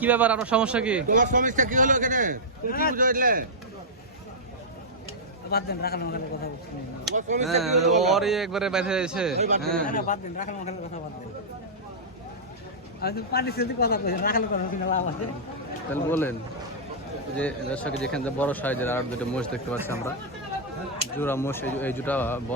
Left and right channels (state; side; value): normal; both; correlation -0.11